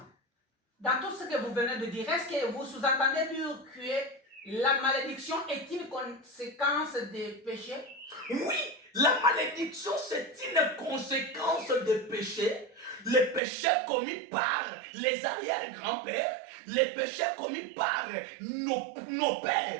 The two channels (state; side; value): drops out; left; at 13.4 s